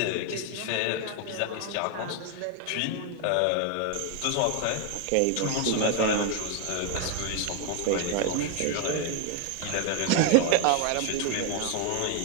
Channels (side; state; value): both; different; correlation 0.01